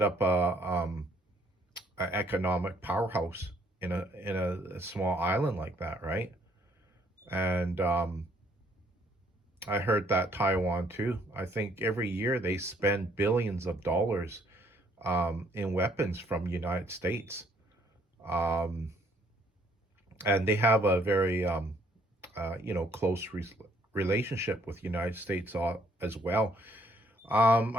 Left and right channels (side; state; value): both; normal; correlation 0.65